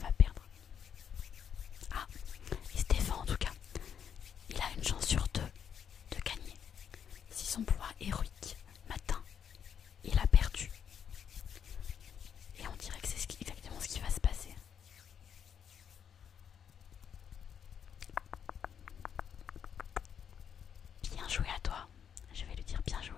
perdre? Ah, il se défend en tout cas. Il a une chance sur 2 de gagner. Si son pouvoir héroïque m'atteint, il a perdu.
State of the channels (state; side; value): quieter; right; 8.0 dB